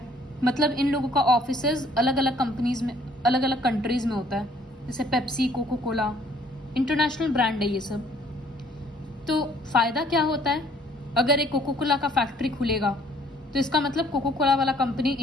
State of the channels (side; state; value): both; normal; correlation 0.60